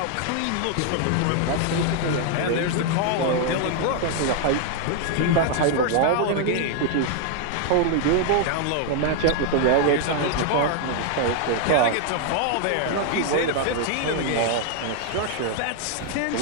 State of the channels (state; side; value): different; both; correlation 0.00